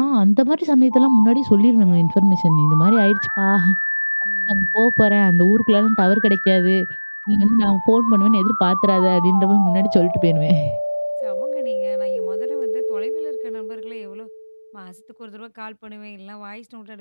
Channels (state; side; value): inverted; both; correlation -1.00